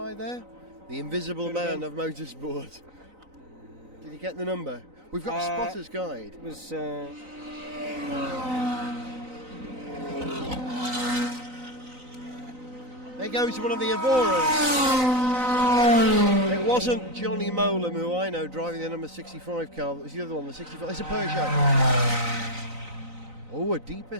there? The invisible man of motorsport. Did you get the number? We've got a spotter's guide. It was. There goes one of the Evoras. It wasn't Johnny Molam, who I know, driving the number 65 car. That was the other one, the 65. It's a Peugeot. Oh, a deeper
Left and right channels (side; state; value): left; late; 3.9 ms